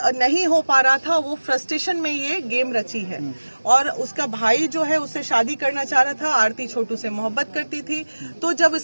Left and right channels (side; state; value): both; inverted; correlation -1.00